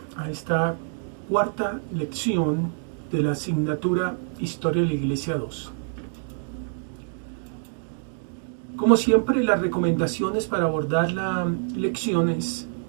a esta cuarta lección de la asignatura Historia de la Iglesia 2. Como siempre, las recomendaciones para abordar la lección es:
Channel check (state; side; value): silent; left; digital silence